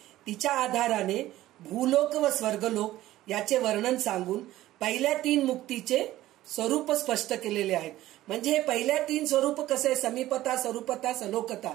तिच्या आधाराने भूलोक व स्वर्गलोक याचे वर्णन सांगून पहिल्या 3 मुक्तीचे स्वरूप स्पष्ट केलेले आहेत. म्हणजे हे पहिल्या 3 स्वरूप कसे समीपता स्वरूपता सलोकता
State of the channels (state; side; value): quieter; left; 15.2 dB